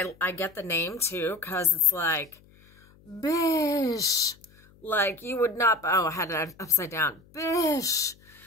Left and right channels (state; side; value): noise; left; hum, 28 dB below the sound